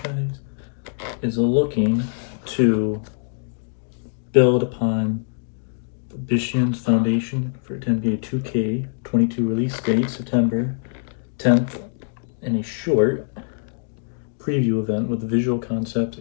is looking to build upon the Bishan's foundation for NBA 2K22 release date, September 10th, in a short preview event with visual concepts.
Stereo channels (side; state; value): right; silent; digital silence